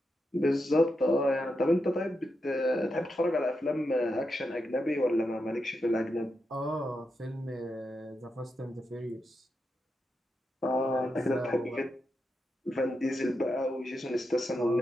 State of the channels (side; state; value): both; normal; correlation 0.86